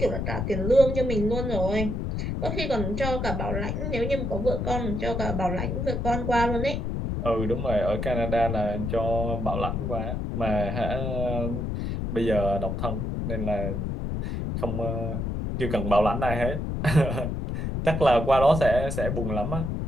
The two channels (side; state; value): left; noise; rumble, 2 dB below the sound